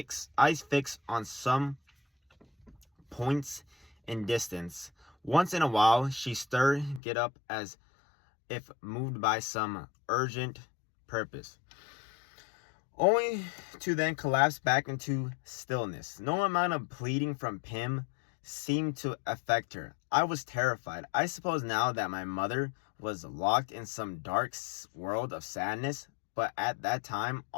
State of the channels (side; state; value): right; drops out; at 7.0 s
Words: fixed on some points in distance. Once in a while, she stirred, get up as if moved by some urgent purpose, only to then collapse back into stillness. No amount of pleading from Pim seemed to affect her. I was terrified. I suppose now that my mother was locked in some dark world of sadness, but at that time,